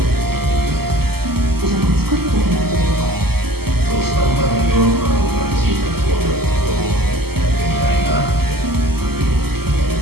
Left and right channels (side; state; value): left; late; 0.96 ms